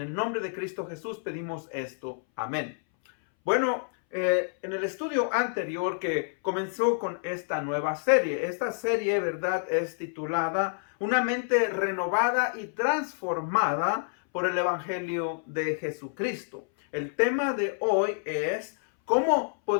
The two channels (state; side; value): silent; right; 59 dB below the other